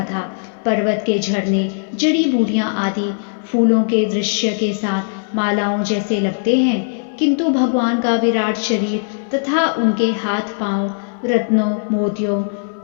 था। पर्वत के झरने, जड़ी बूटियां आदि फूलों के दृश्य के साथ मालाओं जैसे लगते हैं, किंतु भगवान का विराट शरीर तथा उनके हाथ पांव रत्नों, मोतियों,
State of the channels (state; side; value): silent; right; digital silence